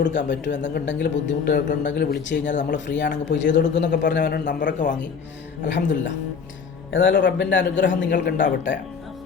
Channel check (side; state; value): right; quieter; 6.0 dB